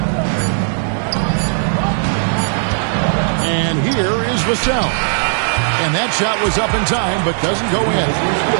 And here is Vassell. And that shot was up in time, but doesn't go in.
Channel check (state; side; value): silent; left; digital silence